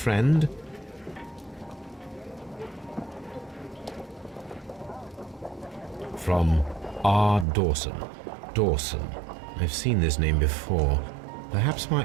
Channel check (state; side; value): drops out; left; at 7.5 s